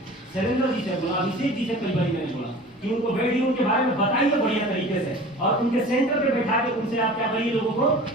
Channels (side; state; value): both; normal; correlation 0.41